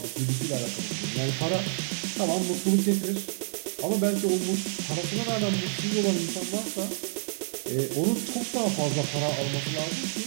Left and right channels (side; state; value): left; silent; digital silence